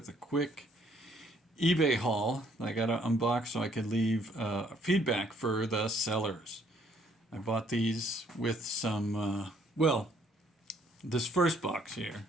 a quick eBay haul I got to unbox so I could leave feedback for the sellers. I bought these with some, this first box here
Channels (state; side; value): normal; both; correlation 0.65